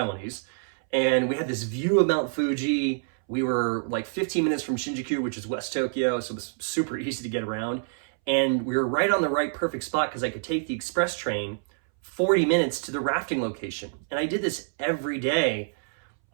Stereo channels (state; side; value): silent; left; 60 dB below the other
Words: And we had this view of Mount Fuji. We were 15 minutes from Shinjuku, which is West Tokyo, so it was super easy to get around. And we were right on the perfect spot because I could take the express train 40 minutes to the rafting location. And I did this every day.